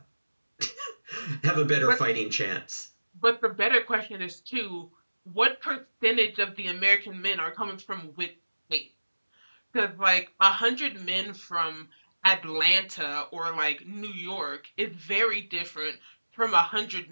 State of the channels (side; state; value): both; inverted; correlation -1.00